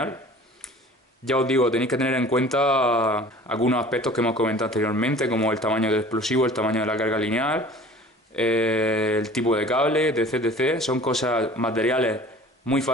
Ya os digo, tenéis que tener en cuenta algunos aspectos que hemos comentado anteriormente, como el tamaño del explosivo, el tamaño de la carga lineal, el tipo de cable, etc. Son materiales muy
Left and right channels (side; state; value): both; normal; correlation 0.45